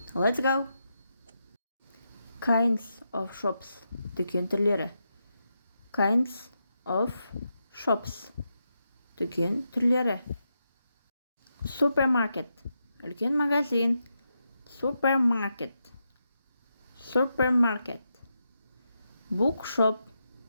Let's go! Kinds of shops. Дүкен түрлері. Kinds of shops. Дүкен түрлері. Supermarket. Үлкен магазин. Supermarket. Supermarket. Bookshop.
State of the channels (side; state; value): both; inverted; correlation -0.85